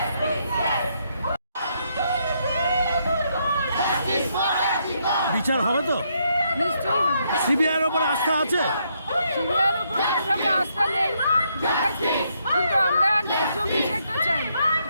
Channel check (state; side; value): inverted; both; correlation -0.75